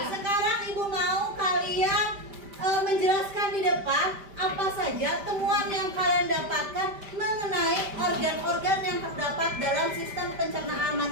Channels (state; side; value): late; left; 5.1 ms